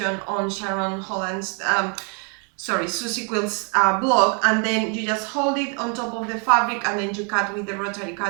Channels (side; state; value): left; quieter; 38.6 dB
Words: on Sharon Holland's Susie Quilt's blog, and then you just hold it on top of the fabric and then you cut with the rotary